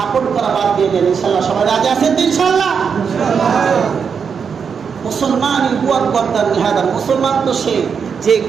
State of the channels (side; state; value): left; quieter; 6.4 dB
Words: করা বাদ দিয়ে দেন। ইনশাল্লাহ সবাই রাজি আছেন তো? ইনশাল্লাহ মুসলমান মুসলমান তো সে যে